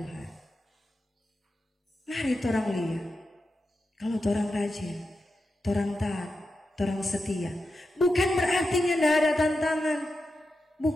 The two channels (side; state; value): both; normal; correlation 0.89